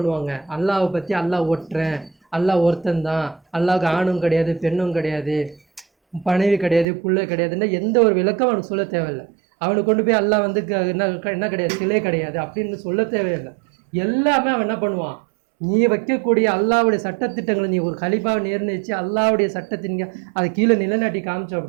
அல்லாவை பற்றி அல்லாஹ் ஒட்டுறேன், அல்லாஹ் ஒருத்தந்தான், அல்லாவுக்கு ஆணும் கிடையாது பெண்ணும் கிடையாது, பணவி கிடையாது, புள்ள கிடையாதுன்னா எந்த ஒரு விளக்கம் அவனுக்கு சொல்ல தேவையில்லை. அவனுக்கு கொண்டு போய் அல்லாஹ் வந்து என்ன கிடையாது, சிலை கிடையாது அப்படின்னு சொல்ல தேவையில்லை. எல்லாமே அவன் என்ன பண்ணுவான், நீ வைக்கக்கூடிய அல்லாவுடைய சட்டத்திட்டங்களை நீ ஒரு கலிப்பாவை நிர்ணயிச்சு அல்லாவுடைய சட்டத்தின் அதை கீழே நிலைநாட்டி காமிச்சோம்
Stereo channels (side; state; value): left; drops out; at 6.9 s